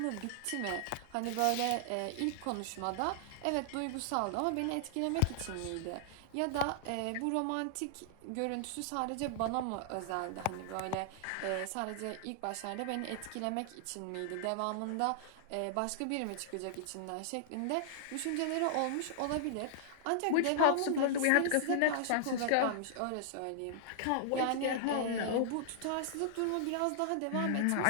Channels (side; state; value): both; different; correlation -0.01